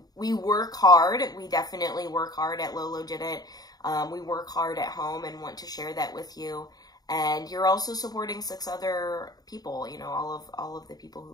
We work hard. We definitely work hard at Lola Did It. We work hard at home and want to share that with you. And you're also supporting 6 other people, you know, all of the people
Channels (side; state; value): right; late; 0.19 ms